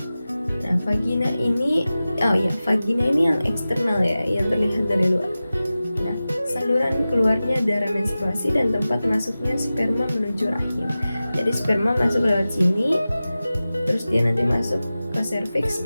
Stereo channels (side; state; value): both; inverted; correlation -0.96